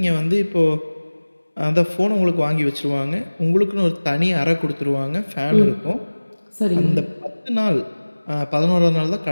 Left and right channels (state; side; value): inverted; both; correlation -1.00